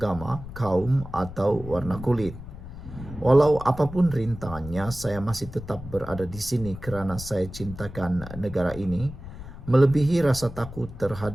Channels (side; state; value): left; noise; rumble, 12 dB below the sound